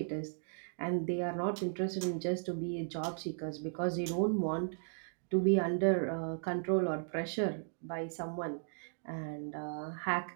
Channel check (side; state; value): left; silent; digital silence